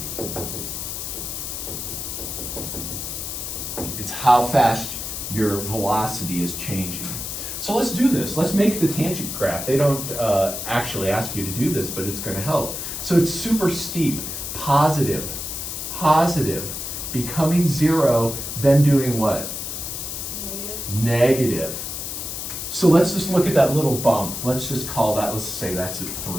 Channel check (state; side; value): noise; left; hiss, 6 dB below the sound